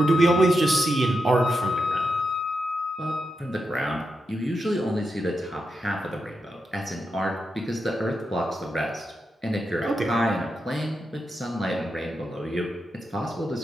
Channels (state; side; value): normal; both; correlation 0.86